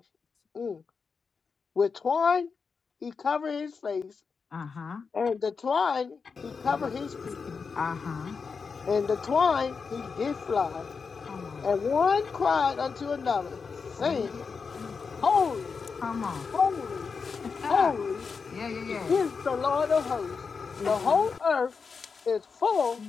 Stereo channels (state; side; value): quieter; right; 5.3 dB